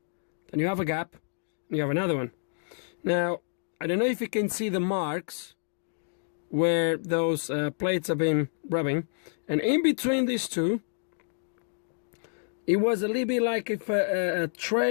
Then you have a gap, and you have another one. Now, I don't know if you can see the marks where those plates have been rubbing. And in between these two, it was a little bit like if a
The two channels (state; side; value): silent; right; digital silence